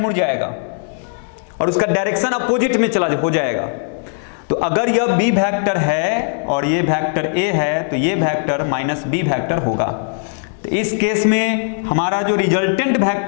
जाएगा और उसका डायरेक्शन अपोजिट में हो जाएगा। तो अगर यह बी वेक्टर है और ये वेक्टर ए है, तो ये वेक्टर माइनस बी वेक्टर होगा। तो इस केस में हमारा जो रिजल्टेंट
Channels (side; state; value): right; silent; digital silence